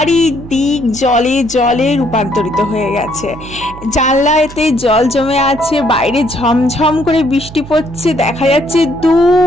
জলে জলে রূপান্তরিত হয়ে গেছে। জানলাতে জল জমে আছে, বাইরে ঝমঝম করে বৃষ্টি পড়ছে, দেখা যাচ্ছে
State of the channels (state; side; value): noise; right; hum, 16 dB below the sound